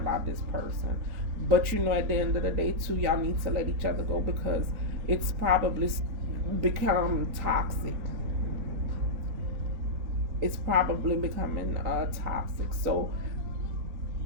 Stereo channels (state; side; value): late; left; 4.3 ms